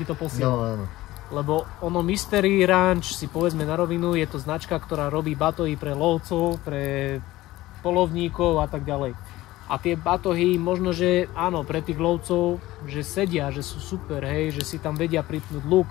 to posielal. No. Lebo ono Mystery Ranch, si povedzme na rovinu, je to značka, ktorá robí batohy pre lovcov, pre polovníkov a tak ďalej. A tie batohy možno, že áno, pre tých lovcov, že sedia, že sú super, hej, že si tam vedia pripnúť luk,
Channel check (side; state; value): right; quieter; 17.2 dB